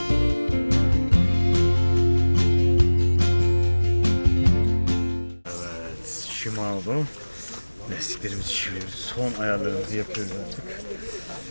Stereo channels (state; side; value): inverted; both; correlation -1.00